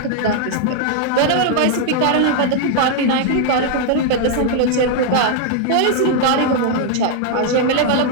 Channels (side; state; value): both; different; correlation 0.00